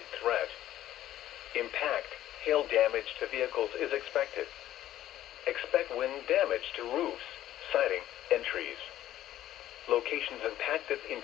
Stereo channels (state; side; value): quieter; right; 13.1 dB